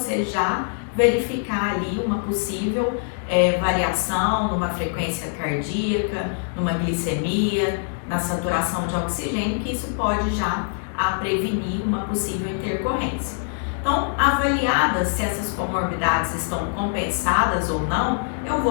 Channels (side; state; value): right; silent; 63 dB below the other